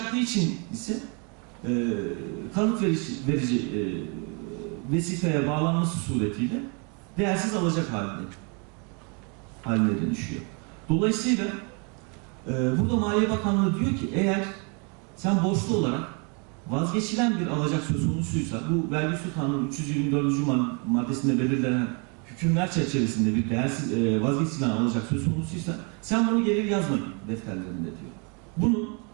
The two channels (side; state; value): left; quieter; 35.1 dB